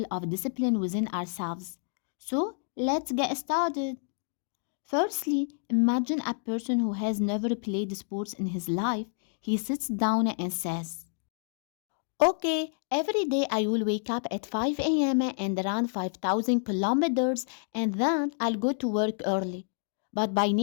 of discipline within ourselves. So, let's get started. Firstly, imagine a person who has never played sports in his life. He sits down and says, okay, every day I will wake up at 5 a.m. and run 5,000 kilometers and then I'll go to work early. But by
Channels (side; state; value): right; silent; digital silence